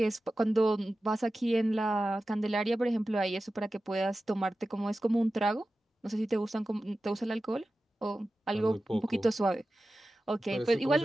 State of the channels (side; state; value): both; normal; correlation 0.94